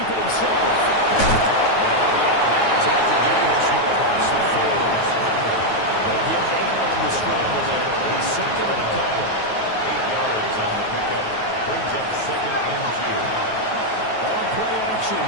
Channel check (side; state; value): right; late; 9.4 ms